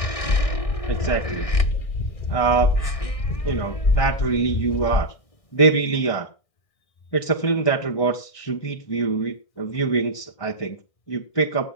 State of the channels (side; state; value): right; late; 1.6 ms